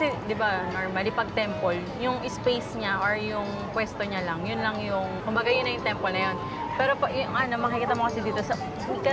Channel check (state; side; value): identical; both; correlation 1.00